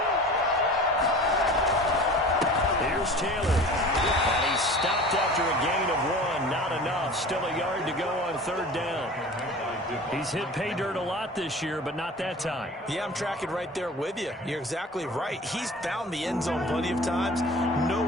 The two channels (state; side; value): normal; both; correlation 0.40